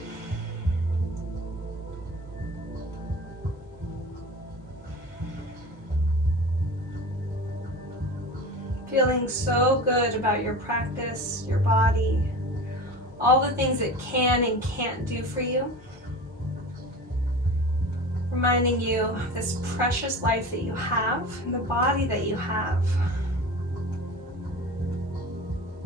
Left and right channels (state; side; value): normal; both; correlation 0.34